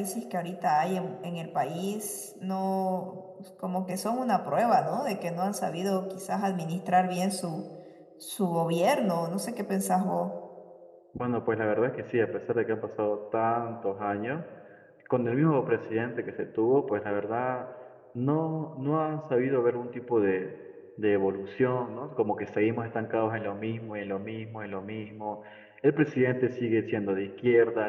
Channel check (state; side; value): identical; both; correlation 1.00